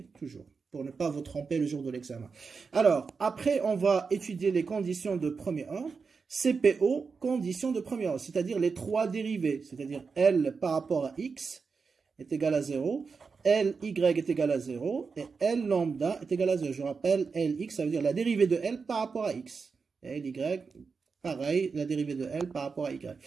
Toujours. Pour ne pas vous tromper le jour de l'examen. Alors, après, on va étudier les conditions de premier ordre. CPO, conditions de premier ordre, c'est-à-dire les trois dérivés, c'est-à-dire L par rapport à X, est égal à 0, Ly est égal à 0, et L lambda est égal à 0. Je rappelle, Lx, ça veut dire la dérivée de L par rapport à x. Et Ly, pareil, la dérivée de L par rapport à y.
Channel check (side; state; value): left; quieter; 5.1 dB